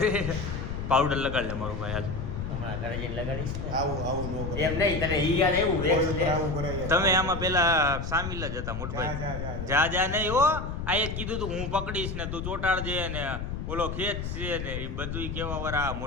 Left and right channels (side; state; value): left; noise; rumble, 5 dB below the sound